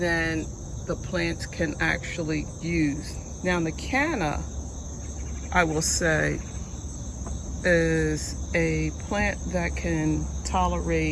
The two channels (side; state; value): both; identical; correlation 1.00